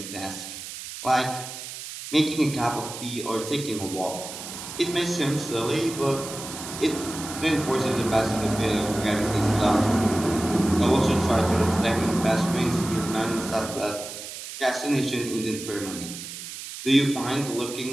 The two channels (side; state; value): right; noise; hiss, 10 dB below the sound